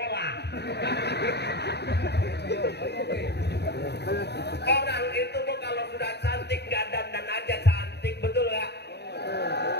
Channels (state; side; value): late; right; 0.49 ms